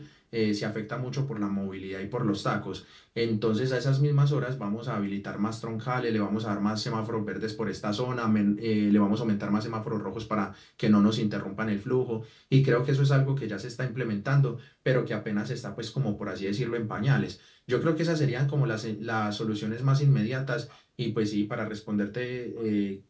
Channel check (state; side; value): identical; both; correlation 1.00